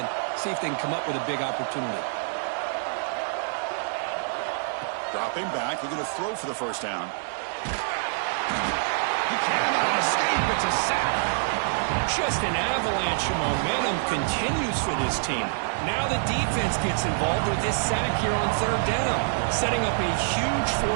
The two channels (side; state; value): left; silent; digital silence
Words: and see if they can come up with a big opportunity. Dropping back, looking to throw for the first down. He cannot escape. It's a sack. Just an avalanche of momentum continues for this team. Now the defense gets involved with this sack here on third down, setting up a huge